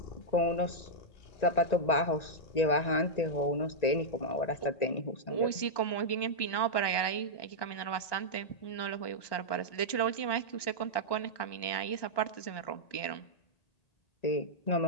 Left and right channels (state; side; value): late; right; 1.2 ms